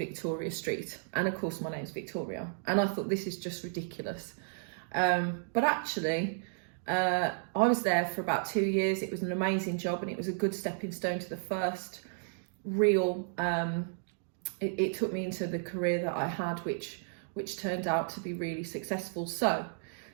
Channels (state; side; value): silent; left; digital silence